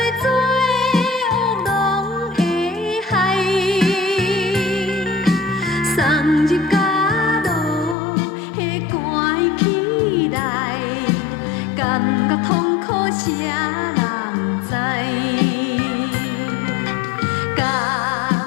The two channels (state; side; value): drops out; right; at 8.0 s